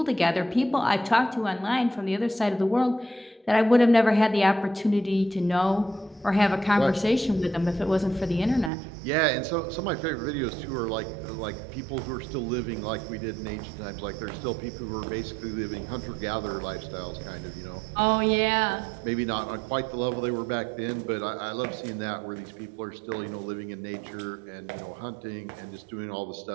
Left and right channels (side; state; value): left; drops out; at 8.7 s